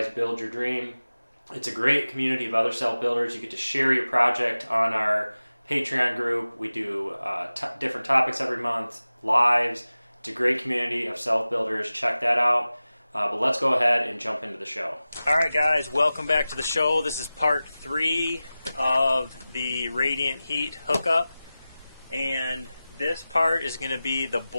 build your dream. It's a great community of other self-builders. You get to share your project on our Patreon group. We do different topics every month, lives. It's a great community of self-builders. Check that out. But let's go ahead and jump into the show. All right, guys, welcome back to the show. This is part 3 of the radiant heat hookup. And this part is going to be the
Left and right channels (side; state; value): both; inverted; correlation -0.96